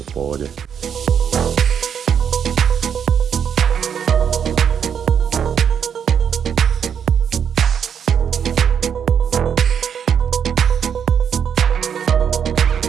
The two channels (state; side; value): quieter; left; 7.9 dB